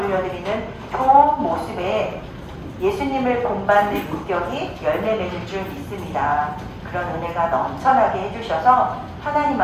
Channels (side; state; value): both; identical; correlation 1.00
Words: 좋은 모습에 예수님을 본받는 인격이 열매 맺을 줄 믿습니다. 그런 은혜가 넘쳐나게 해주셔서 하나님